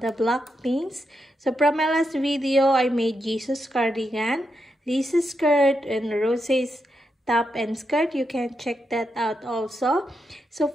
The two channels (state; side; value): normal; both; correlation 0.84